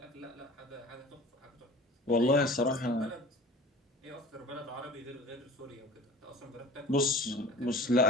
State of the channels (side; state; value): both; normal; correlation 0.42